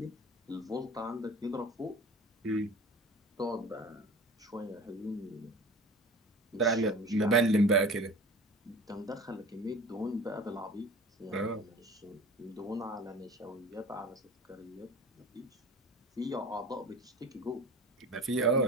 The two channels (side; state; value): both; normal; correlation 0.38